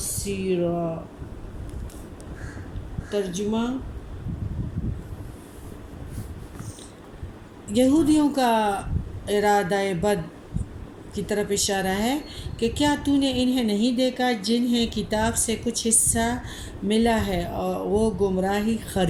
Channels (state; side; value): identical; both; correlation 1.00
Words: ترجمہ: یہودیوں کا ارادہ بد کی طرف اشارہ ہے کہ کیا تو نے انہیں نہیں دیکھا جنہیں کتاب سے کچھ حصہ ملا ہے اور وہ گمراہی